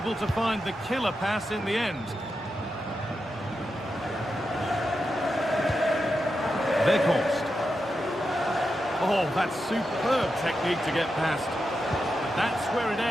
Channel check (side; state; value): both; normal; correlation 0.88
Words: to find the killer pass in the end. Weghorst. Oh, that's superb technique to get past. The That's where it